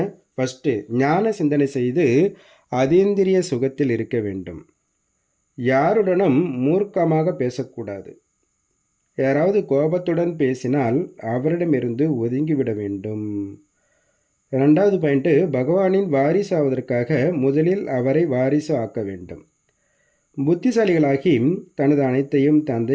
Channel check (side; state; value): both; identical; correlation 1.00